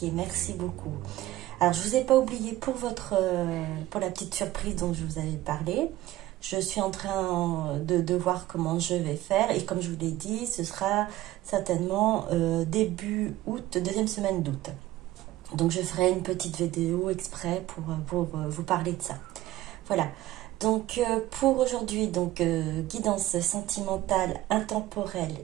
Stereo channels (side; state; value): left; quieter; 15.7 dB